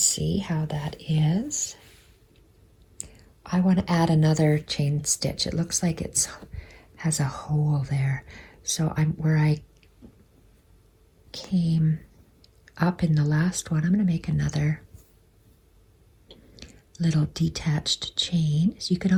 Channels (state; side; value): identical; both; correlation 1.00